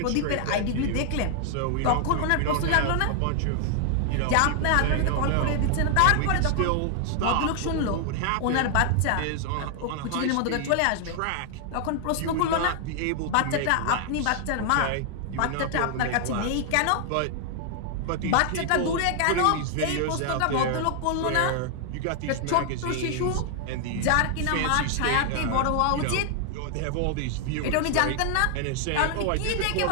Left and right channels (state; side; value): different; both; correlation 0.00